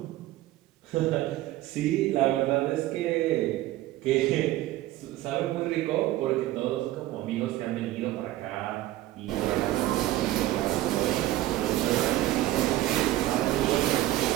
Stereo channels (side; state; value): left; quieter; 15.7 dB